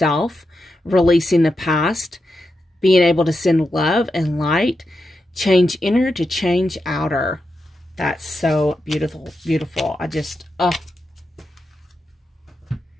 releasing the past, being able to send love and light, change inner to change outer. That's so beautiful, beautiful. I just,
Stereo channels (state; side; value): normal; both; correlation 0.87